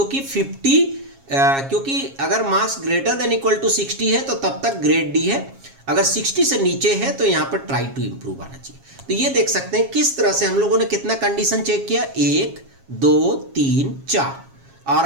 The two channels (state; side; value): late; left; 7.3 ms